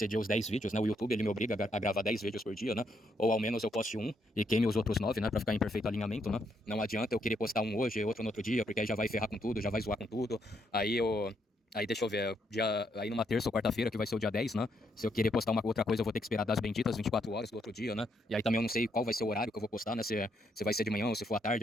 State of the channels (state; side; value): normal; both; correlation 0.75